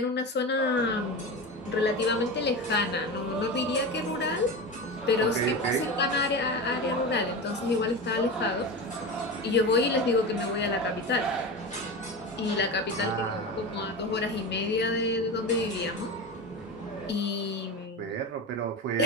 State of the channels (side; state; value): both; normal; correlation 0.25